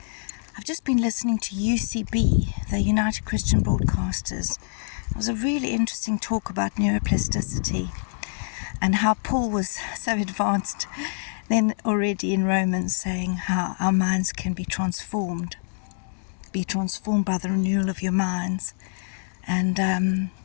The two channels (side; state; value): right; silent; digital silence